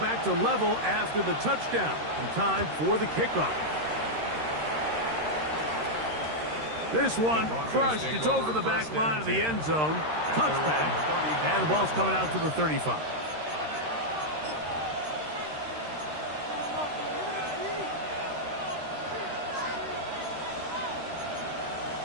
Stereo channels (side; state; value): left; late; 13 ms